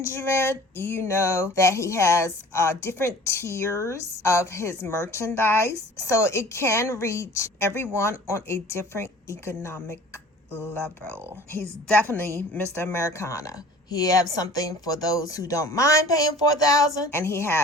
You know that he has different tiers of his merchandise, so it can reach everyone on a different economic level. He's definitely Mr. Americana. He has something for those who don't mind paying $4,000, and he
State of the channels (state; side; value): normal; both; correlation 0.46